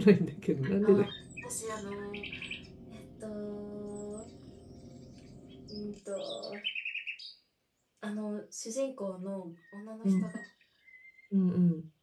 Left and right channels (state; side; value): identical; both; correlation 1.00